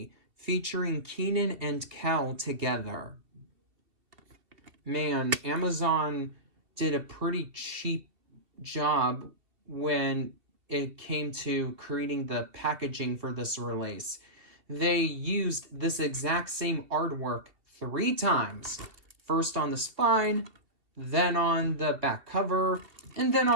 featuring Kenan and Cal together. Man, Amazon did a pretty cheap job when it came to creating the packaging for this release. They used this exact same artwork 3 times. First on the spine, then on the back cover, and then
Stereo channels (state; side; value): late; left; 2.5 ms